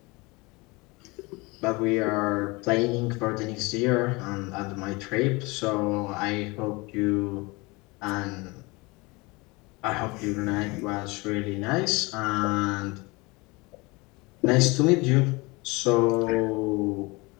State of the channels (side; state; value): right; quieter; 25.1 dB